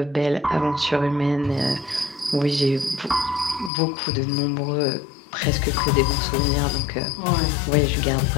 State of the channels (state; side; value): drops out; right; at 3.7 s